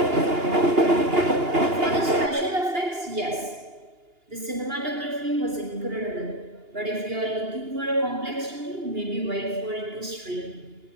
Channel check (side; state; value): left; late; 2.8 ms